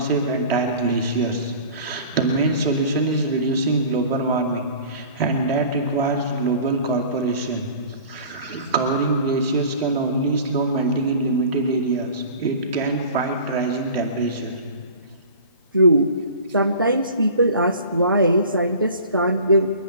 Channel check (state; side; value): inverted; both; correlation -0.42